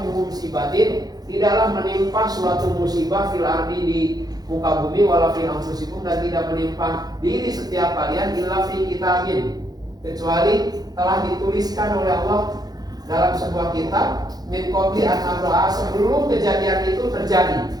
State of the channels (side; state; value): left; late; 0.19 ms